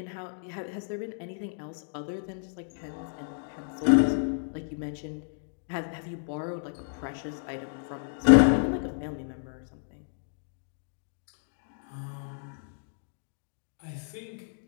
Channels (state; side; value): silent; right; digital silence